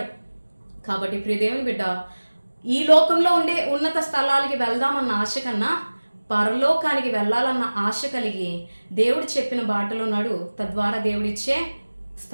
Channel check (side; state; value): both; inverted; correlation -1.00